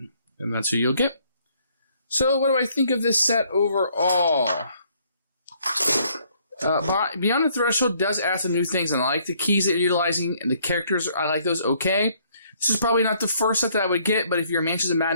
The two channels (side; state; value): both; inverted; correlation -0.65